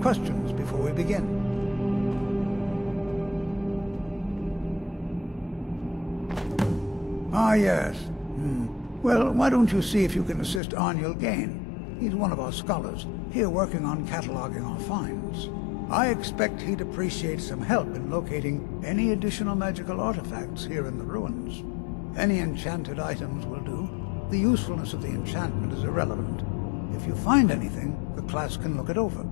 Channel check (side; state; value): right; drops out; at 10.6 s